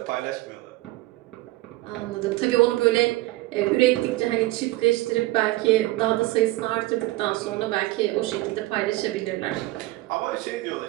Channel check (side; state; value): left; quieter; 19.0 dB